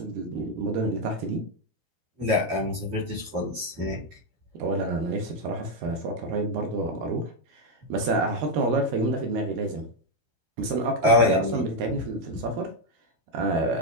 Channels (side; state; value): left; late; 13 ms